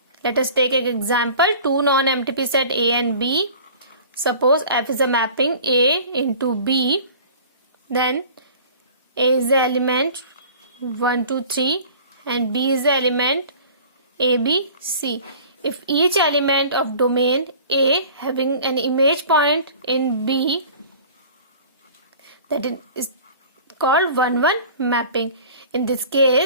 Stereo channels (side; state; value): both; inverted; correlation -0.45